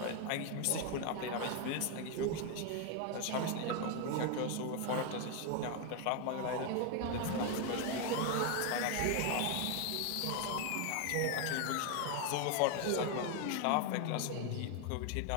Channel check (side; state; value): both; different; correlation 0.01